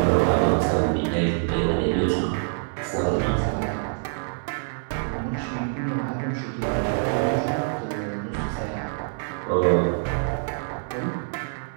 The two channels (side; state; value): left; silent; digital silence